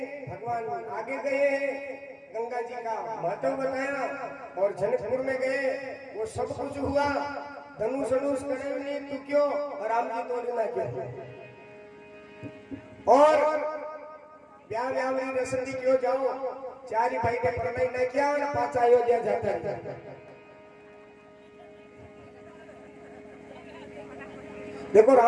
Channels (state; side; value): identical; both; correlation 1.00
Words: भगवान आगे गए हैं, गंगा जी का महत्व बताया और जनकपुर में गए, वो सब कुछ हुआ। धनुष करे नहीं तू क्यों, और राम जी तो ना क्यों, और ब्याह में रसम दी क्यों जाओ, चार भाई का प्रणय न किया और 5 अयोध्या जाता है। देखो